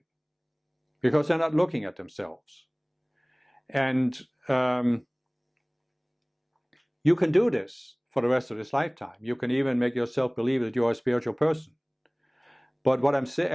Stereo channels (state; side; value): identical; both; correlation 1.00